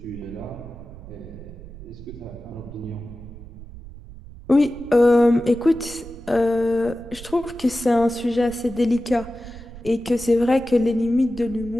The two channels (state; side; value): noise; right; rumble, 15 dB below the sound